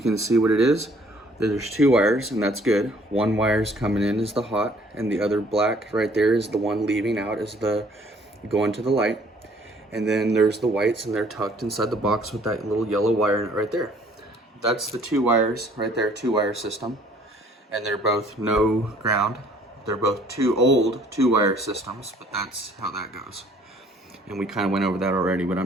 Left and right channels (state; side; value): normal; both; correlation 0.58